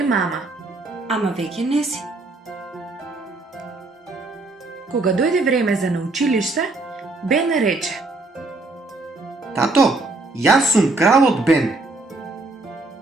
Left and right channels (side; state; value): left; quieter; 3.1 dB